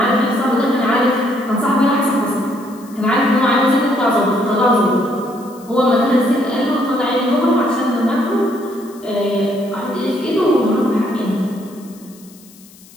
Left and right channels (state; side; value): noise; left; hiss, 24 dB below the sound